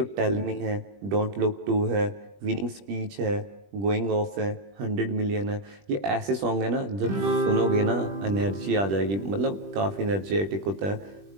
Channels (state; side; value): late; left; 20 ms